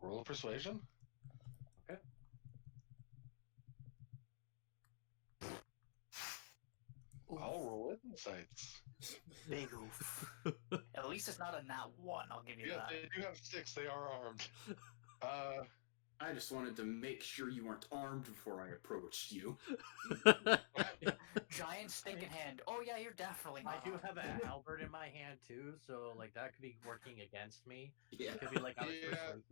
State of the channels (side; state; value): right; silent; digital silence